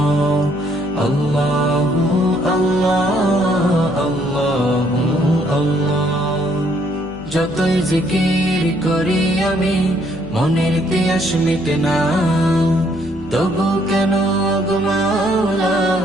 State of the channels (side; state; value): left; noise; hum, 18 dB below the sound